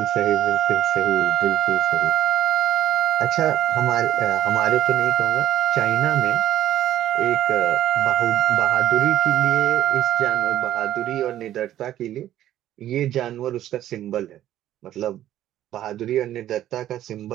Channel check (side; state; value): left; quieter; 12.5 dB